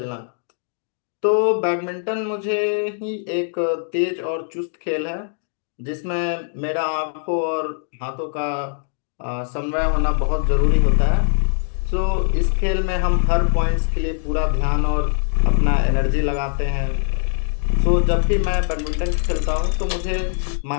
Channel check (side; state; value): right; silent; digital silence